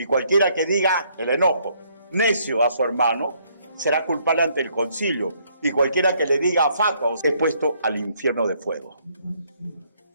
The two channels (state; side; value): inverted; both; correlation -0.68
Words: cualquiera que diga el enojo necio a su hermano será culpable ante el concilio. Y cualquiera que le diga fatua es puesto al infierno de fuego.